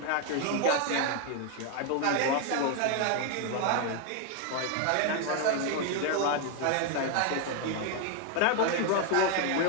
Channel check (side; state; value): both; different; correlation 0.01